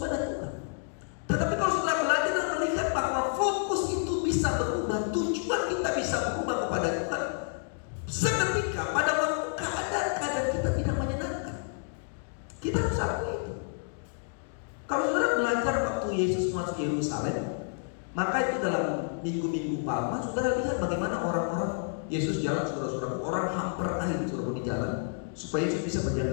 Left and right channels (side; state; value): right; silent; digital silence